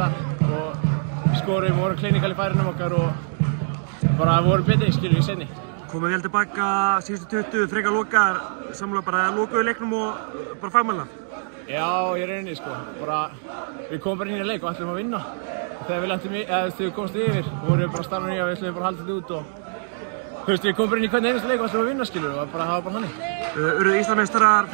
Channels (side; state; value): left; silent; digital silence